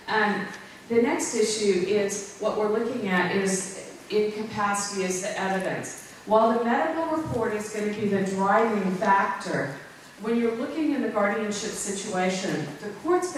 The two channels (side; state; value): both; identical; correlation 1.00